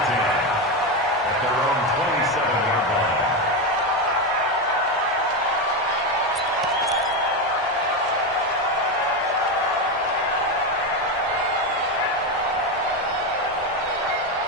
At their own 27-yard line.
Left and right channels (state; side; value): normal; both; correlation 0.12